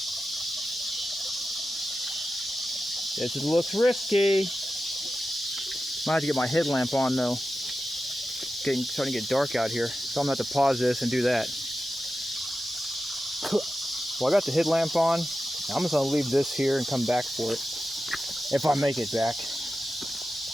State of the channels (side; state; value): both; normal; correlation 0.92